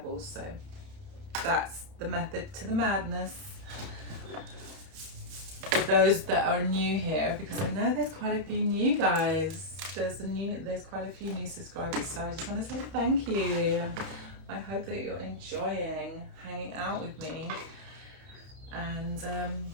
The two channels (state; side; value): late; left; 31 ms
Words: So that's the method to the madness. For those that are new here, because I know there's quite a few new guys. There's quite a few new subscribers, so I just want to say thank you. I hope that you're enjoying hanging out with me, and